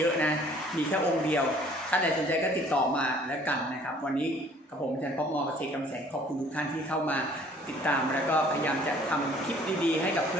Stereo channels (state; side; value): normal; both; correlation 0.56